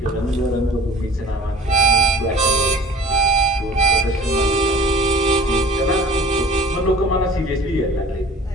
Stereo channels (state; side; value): normal; both; correlation 0.46